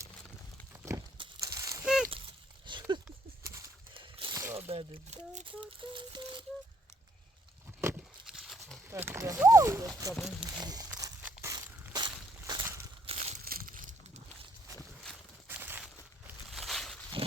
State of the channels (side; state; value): both; normal; correlation 0.68